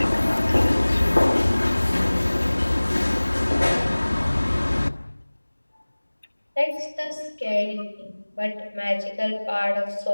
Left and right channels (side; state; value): both; inverted; correlation -1.00